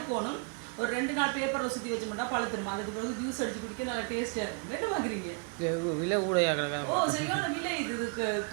ஒரு 2 நாள் பேப்பரில் சுற்றி வச்சு மட்டும் பழுத்துருமா. அதுக்கு பிறகு ஜூஸ் அடிச்சு குடிக்க நல்லா டேஸ்ட்டாக இருக்கும். என்ன பார்க்குறீங்க? விலை கூட. ஓ சரியான விலை. இதுக்கு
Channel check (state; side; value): quieter; left; 37.6 dB